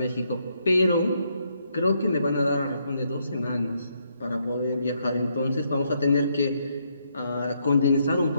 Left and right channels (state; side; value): inverted; both; correlation -0.75